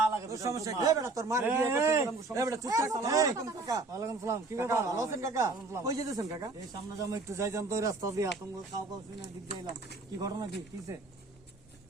লাগে। তোর সমস্যা কি? এই বেটা, তোর মার বিয়ে করতে এই, গেলাম, সমস্যা। এই বেটা, চুপ থাক। আসসালামু আলাইকুম কাকা। ওয়ালাইকুম সালাম। কি কাকা, ব্যাপার? ভালো আছেন কাকা? কই যেতেছেন কাকা? এই সামনে যাবো একটু যাইতাম তো, ওই রাস্তা দিয়ে আতঙ্ক কাউ কাউ শুনে দিক দিয়ে এলাম। কি ঘটনা কি কিসে?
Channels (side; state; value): left; quieter; 3.4 dB